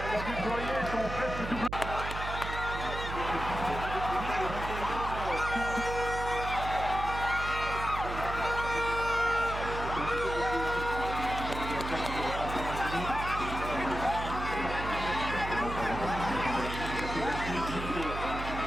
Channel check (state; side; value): noise; right; hum, 7 dB below the sound